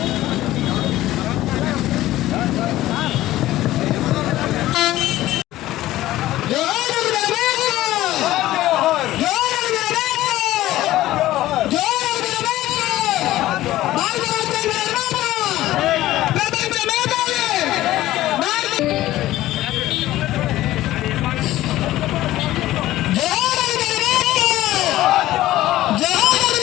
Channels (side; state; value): right; quieter; 15.5 dB